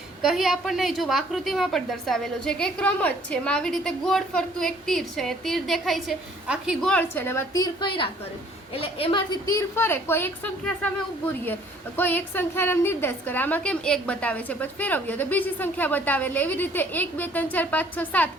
કહી આપણને જો આકૃતિમાં પણ દર્શાવેલું છે કે એક રમત છે, એમાં આવી રીતે ગોળ ફરતું એક તીર છે. તીર દેખાય છે, આખી ગોળ છે, અને એમાં તીર કર્યા કરે, એટલે એમાંથી તીર ફરે, કોઈ એક સંખ્યા સામે ઊભું રહીએ, કોઈ એક સંખ્યાનો નિર્દેશ કરે. આમાં કેમ એક બતાવે છે, પછી ફેરવીએ તો બીજી સંખ્યા બતાવે, એટલે એવી રીતે 1 2 3 4 5 6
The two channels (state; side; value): normal; both; correlation 0.58